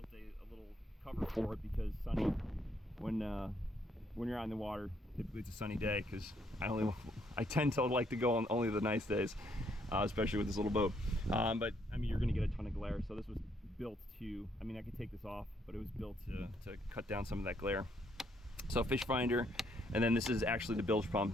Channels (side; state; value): both; normal; correlation 0.71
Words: a little cover for it because sunny, when you're out in the water, typically it's a sunny day, because I tend to like to go on only the nice days, especially with this little boat. But I mean, you're going to get a ton of glare, so this was built to, I mean, I could take this off, but it was built to cut down some of that glare. So fish finder, and then this is actually the bilge